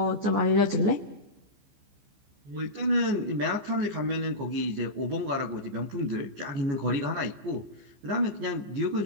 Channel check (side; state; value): left; late; 15 ms